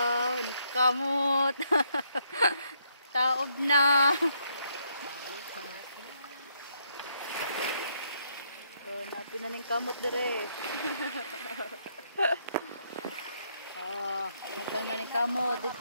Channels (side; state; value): both; inverted; correlation -0.74